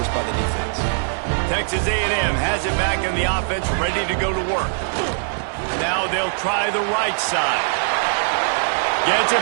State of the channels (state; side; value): silent; left; digital silence